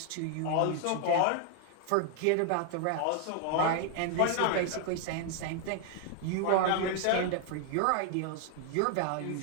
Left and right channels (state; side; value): different; both; correlation 0.00